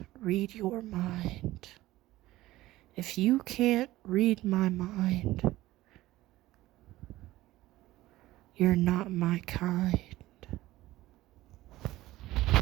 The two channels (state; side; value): quieter; left; 16.8 dB